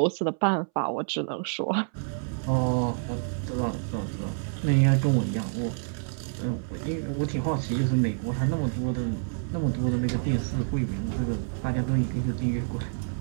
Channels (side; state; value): left; silent; 59 dB below the other